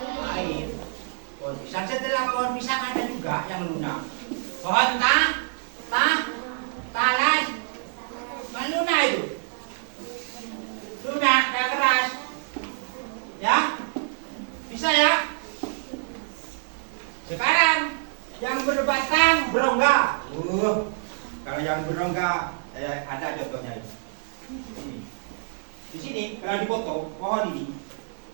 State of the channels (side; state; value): left; silent; digital silence